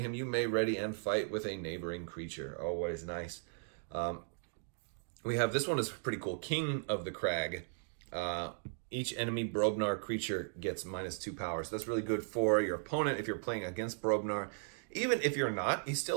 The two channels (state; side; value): silent; left; digital silence